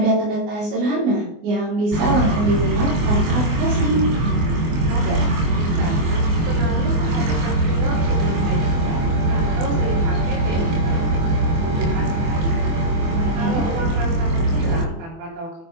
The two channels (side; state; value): left; late; 24 ms